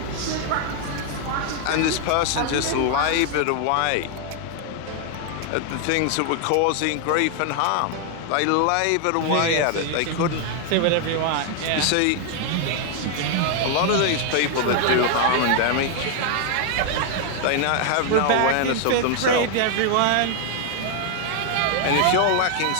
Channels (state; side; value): different; both; correlation 0.00